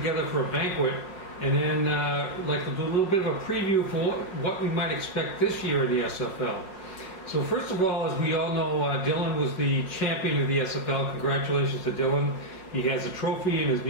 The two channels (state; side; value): late; right; 5.3 ms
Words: for a banquet, and then like to do a little bit of a preview for what we might expect this year in the SFL. So first of all, as we all know, Dylan was the champion of the SFL. Congratulations to Dylan. He has a trophy in his